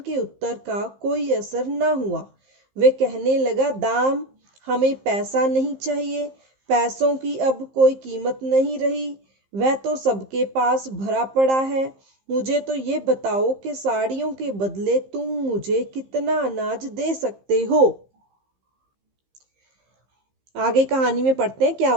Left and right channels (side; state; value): left; late; 15 ms